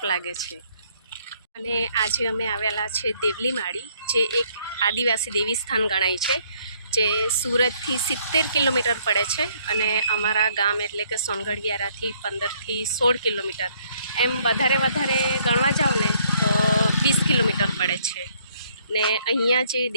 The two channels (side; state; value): both; inverted; correlation -0.66